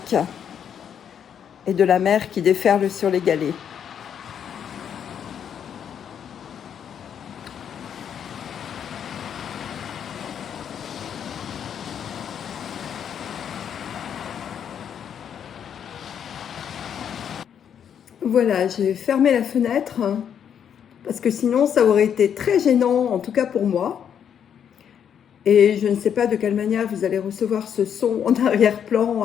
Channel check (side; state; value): right; quieter; 8.5 dB